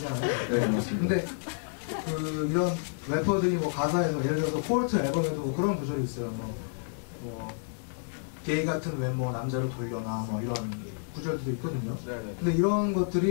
근데 그 이런 래퍼들이 뭐 가사에서 예를 들어서 폴트 앨범에도 뭐 그런 구절이 있어요. 뭐 게이 같은 외모 남자로 돌려놔 뭐 이런 구절도 있거든요. 근데 이런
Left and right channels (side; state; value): right; silent; digital silence